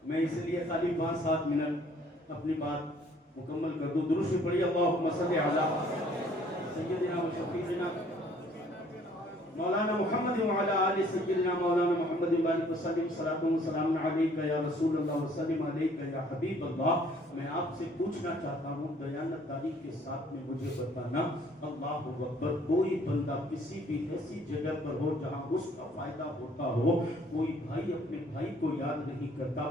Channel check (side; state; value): both; normal; correlation 0.59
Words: میں اس لیے خالی 5-7 منٹ اپنی بات مکمل کر دوں۔ درود پڑھیے اللہم صلی علی سیدنا و شفیعنا مولانا محمد وعلی آل سیدنا مولانا محمد وبارک وسلم، صلاۃ و سلام علیک یا رسول اللہ وسلم علیک یا حبیب اللہ۔ میں آپ سے پوچھنا چاہتا ہوں، دیانتداری کے ساتھ میں مجھے بتانا، اللہ اکبر، کوئی بندہ کسی بھی ایسی جگہ پر ہو جہاں اس کا فائدہ ہوتا ہو، کوئی بھائی اپنے بھائی کو یاد نہیں کرتا،